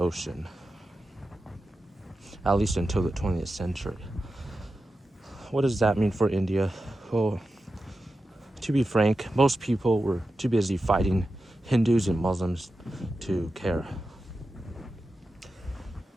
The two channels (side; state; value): both; normal; correlation 0.92